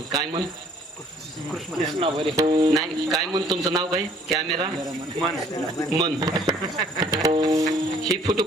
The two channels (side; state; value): both; normal; correlation 0.58